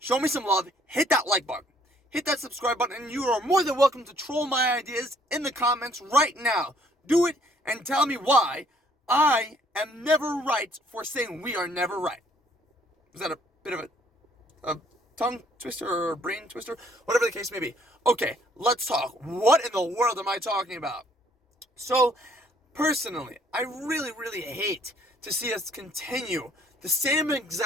me some love. Hit that like button. Hit that subscribe button, and you are more than welcome to troll my ideas in the comments right now. Do it and tell me why I am never right for saying we are never right. Was that a bit of a tongue twister or a brain twister? Whatever the case may be. Okay, let's talk. What in the world am I talking about? So, personally, I really hate to see us continue the same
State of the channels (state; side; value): normal; both; correlation 0.62